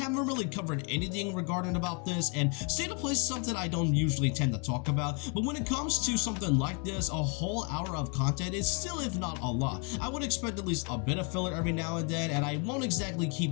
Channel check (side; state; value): right; quieter; 35.8 dB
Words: really covered anything regarding about this, and State of Play is something I don't usually tend to talk about, but when it comes to something like this, a whole hour of content is still, if not a lot. I would expect at least a bit of filler every now and then, and I won't exactly keep